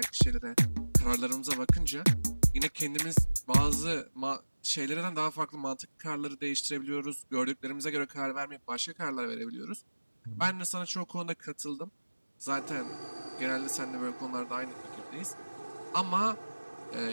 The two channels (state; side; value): inverted; both; correlation -1.00